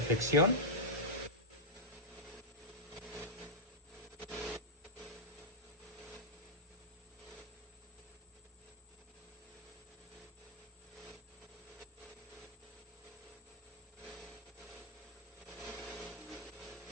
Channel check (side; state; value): both; normal; correlation -0.08